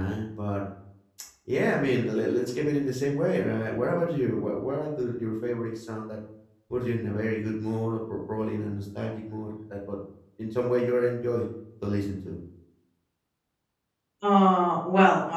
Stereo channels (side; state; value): both; identical; correlation 1.00